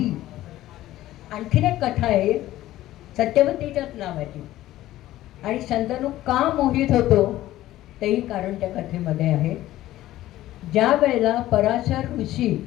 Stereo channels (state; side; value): quieter; right; 14.9 dB